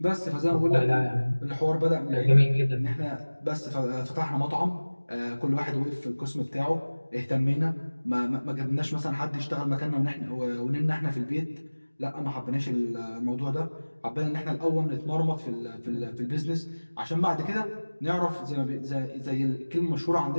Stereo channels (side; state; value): both; inverted; correlation -1.00